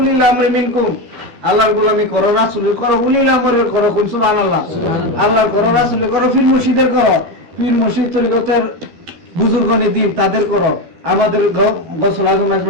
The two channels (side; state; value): left; late; 13 ms